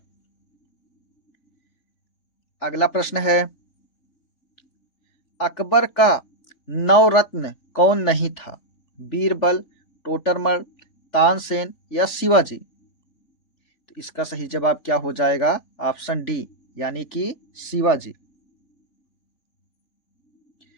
अगला प्रश्न है, अकबर का नवरत्न कौन नहीं था? बीरबल, टोडरमल, तानसेन या शिवाजी? तो इसका सही जवाब क्या हो जाएगा? ऑप्शन डी, यानी कि शिवाजी।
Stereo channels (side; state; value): right; late; 3.4 ms